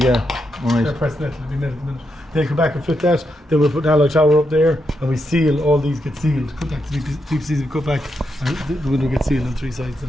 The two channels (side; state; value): both; normal; correlation 0.83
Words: Right. pressed net. They'll be made at the minute. They come back and fit that. Then we'll put an alloy tower up there, and we seal. All these get sealed. Cut back the PVCs we cut back, and the window gets sealed on 3 sides.